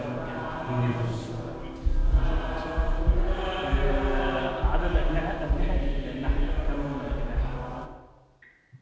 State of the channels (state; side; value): identical; both; correlation 1.00